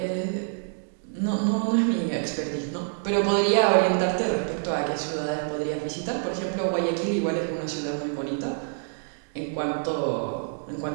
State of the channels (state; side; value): silent; left; digital silence